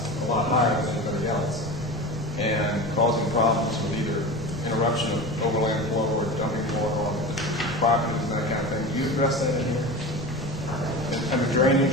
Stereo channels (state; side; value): noise; right; rumble, 12 dB below the sound